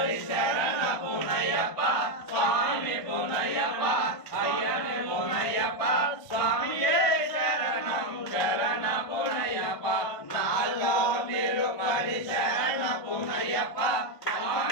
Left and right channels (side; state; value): right; late; 1.5 ms